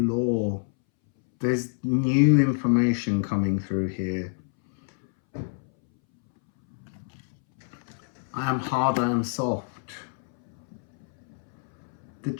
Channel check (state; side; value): silent; right; 60 dB below the other